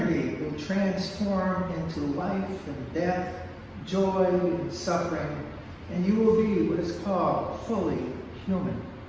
will transform into life and death, joy and suffering, and you will be what is called fully human.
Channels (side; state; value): both; identical; correlation 1.00